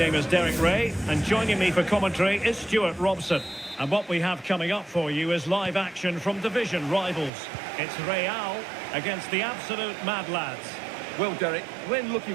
is Derek Ray, and joining me for commentary is Stuart Robson. And what we have coming up for you is live action from division rivals. It's Real against the absolute mad lads. Well, Derek, when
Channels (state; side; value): drops out; left; at 7.3 s